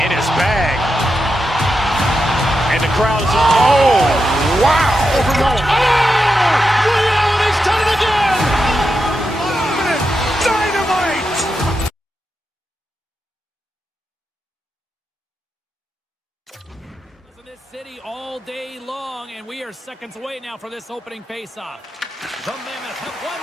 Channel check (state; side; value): normal; both; correlation 0.87